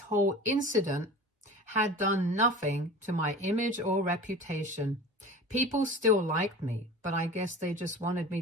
whole incident had done nothing to my image or reputation. People still liked me, but I guess they just wanted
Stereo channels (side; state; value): both; normal; correlation 0.37